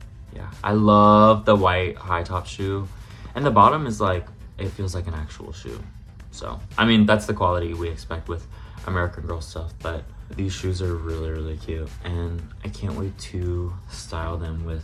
yeah, I love the white high top shoe, and the bottom is like, it feels like an actual shoe. So I mean, that's the quality we expect with American Girl stuff, but these shoes are really, really cute, and I can't wait to style them with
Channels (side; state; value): both; identical; correlation 1.00